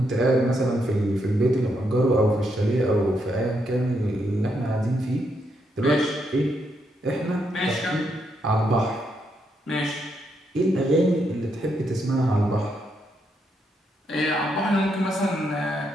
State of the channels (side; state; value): both; normal; correlation 0.79